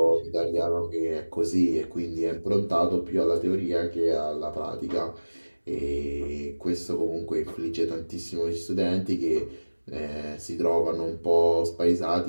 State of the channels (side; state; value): both; inverted; correlation -1.00